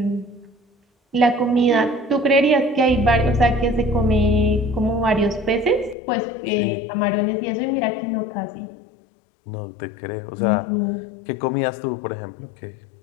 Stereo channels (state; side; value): drops out; right; at 6.0 s